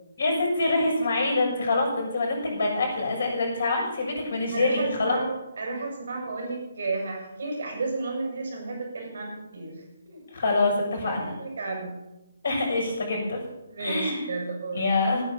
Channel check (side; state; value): both; inverted; correlation -0.76